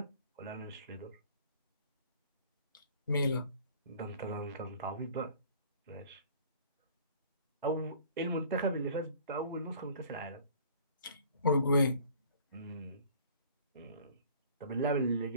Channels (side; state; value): both; inverted; correlation -0.50